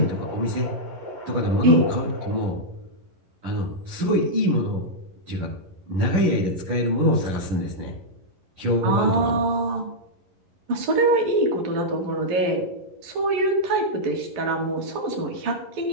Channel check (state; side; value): late; left; 11 ms